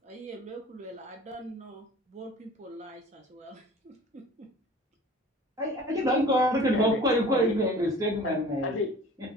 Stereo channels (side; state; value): both; normal; correlation 0.45